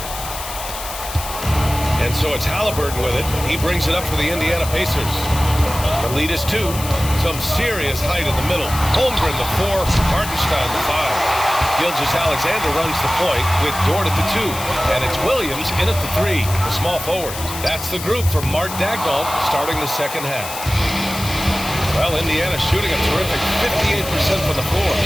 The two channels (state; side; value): noise; left; hiss, 9 dB below the sound